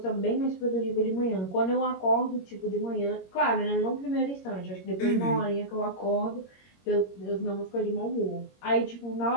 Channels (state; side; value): late; right; 21 ms